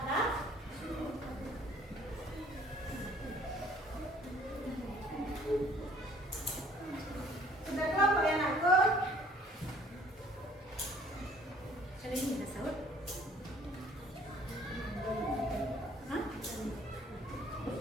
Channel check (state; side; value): normal; both; correlation 0.56